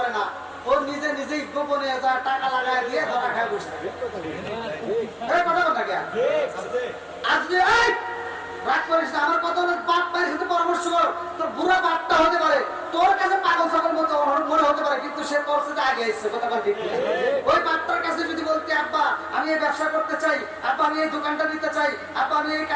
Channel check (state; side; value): identical; both; correlation 1.00